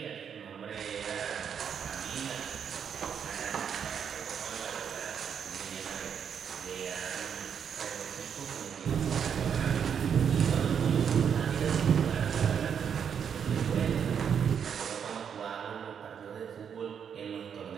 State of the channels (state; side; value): quieter; left; 7.7 dB